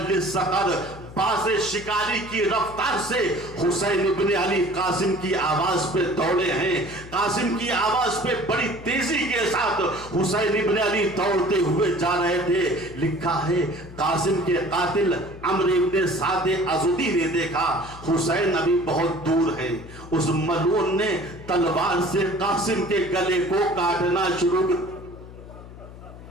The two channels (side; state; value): left; noise; hum, 16 dB below the sound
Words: الصقر, باز شکاری کی رفتار سے حسین ابن علی قاسم کی آواز پہ دوڑے ہیں. قاسم کی آواز پہ بڑی تیزی کے ساتھ حسین ابن علی دوڑتے ہوئے جا رہے تھے. لکھا ہے قاسم کے قاتل عمرو ابن سعد ازدی نے دیکھا حسین ابھی بہت دور ہے. اس ملعون نے تلوار سے قاسم کے گلے کو کاٹنا شروع کر.